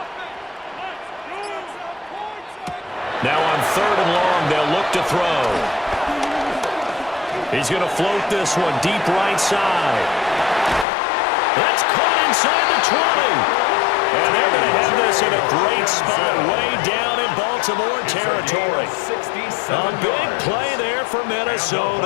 Now on 3rd and long, they'll look to throw. He's going to float this one deep right side. That's caught inside the 20. And they're going to have this in a great spot way down in Baltimore territory. A big play there for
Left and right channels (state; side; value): drops out; right; at 10.9 s